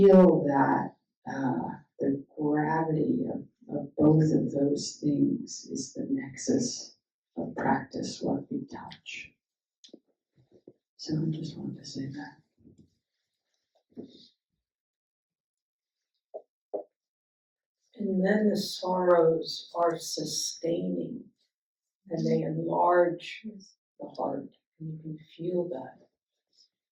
that the gravity of both of those things is the nexus of practice, what we touch. So I just wanted to say that. And then the sorrows are sustaining, and they enlarge the heart, and you can feel that.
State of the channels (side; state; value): both; identical; correlation 1.00